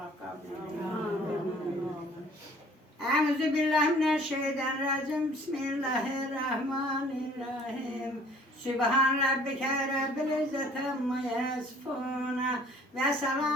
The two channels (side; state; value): both; normal; correlation 0.54